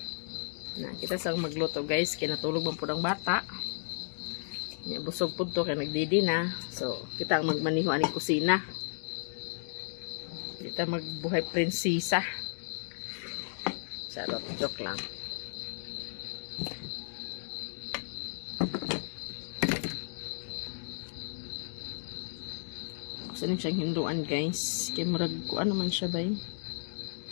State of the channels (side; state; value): right; silent; digital silence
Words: Na kita sang magluto guys, kinatulog man pud ang bata. Ya, busog po to kaya nagdidi na. So, kita ang magmaniho aning kusina. Kita magbuhay prinsesa. Charot, joke lang. Gusto niyo siyang hinduan guys. Kaya murag ko ano man siya ba eh.